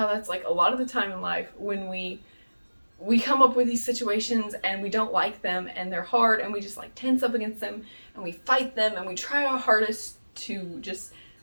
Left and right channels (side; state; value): both; inverted; correlation -1.00